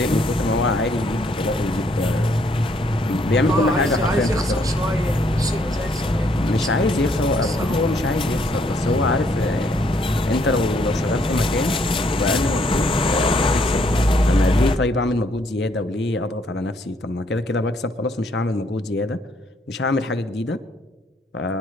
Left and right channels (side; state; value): both; normal; correlation 0.69